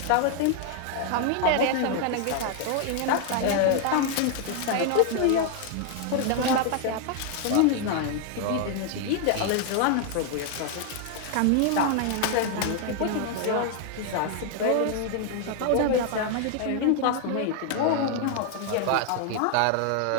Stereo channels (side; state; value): both; different; correlation 0.00